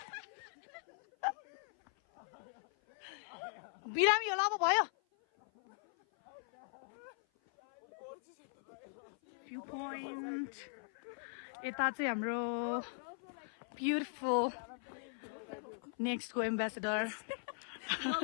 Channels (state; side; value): silent; right; 51 dB below the other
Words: बिरामी होला अब भयो भ्यू पोइन्ट यता चाहिँ हाम्रो ब्युटिफुल नेक्स्टको एम्बेसेडर